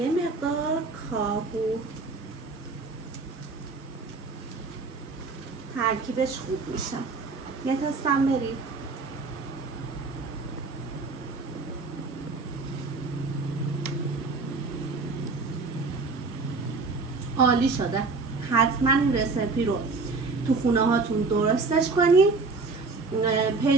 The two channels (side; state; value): left; quieter; 4.0 dB